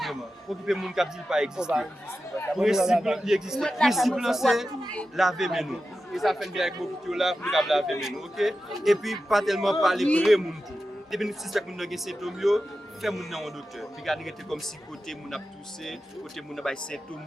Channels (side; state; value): both; normal; correlation 0.92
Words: vraiment. Occuper moun qui dit pas exister. Principe il existe. Principe c'est laver mes nous. Et ça fait bien avec beaucoup là pour laver mes nous, OK? Et puis pas tellement parler vrai moun tout. Depuis nous suspect moun nan gen symptôme yo, fait moun nan un docteur. Puis garder comme si côté moun a toussé, côté moun a bay symptôme